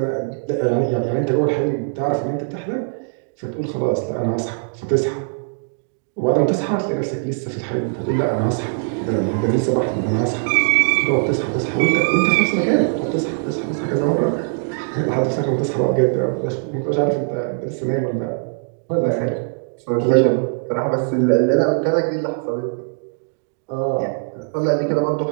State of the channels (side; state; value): left; silent; digital silence